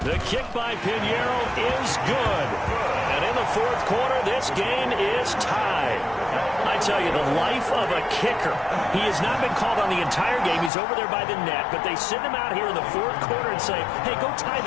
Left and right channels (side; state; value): right; drops out; at 10.7 s